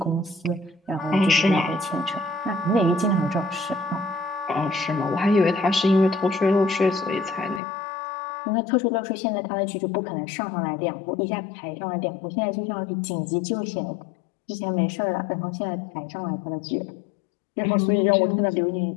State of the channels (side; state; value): right; drops out; at 7.6 s